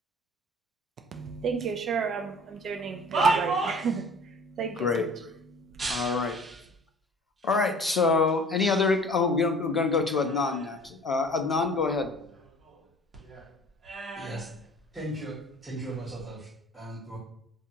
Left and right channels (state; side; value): normal; both; correlation 0.47